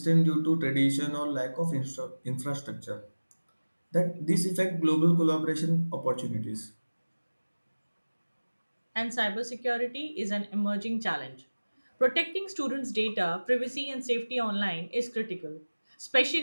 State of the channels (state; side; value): inverted; both; correlation -1.00